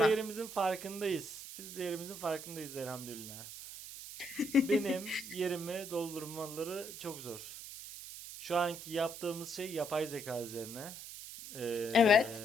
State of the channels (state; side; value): noise; right; hiss, 11 dB below the sound